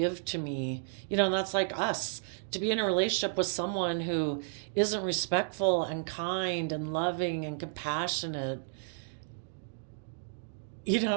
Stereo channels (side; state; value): left; silent; digital silence